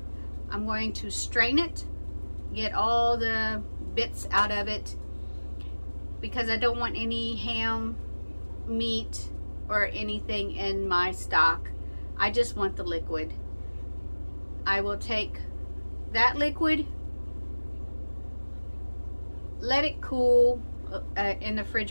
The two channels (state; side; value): inverted; both; correlation -1.00